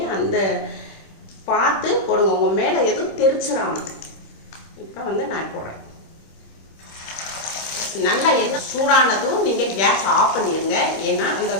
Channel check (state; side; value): late; right; 26 ms